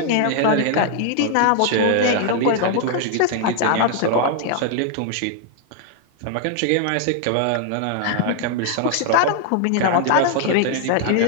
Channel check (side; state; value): both; different; correlation 0.00